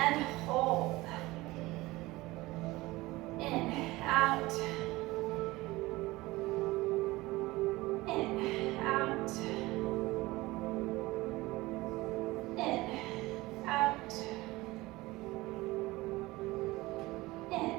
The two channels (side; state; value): left; quieter; 20.0 dB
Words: hold. In, out. In, out. In, out. In,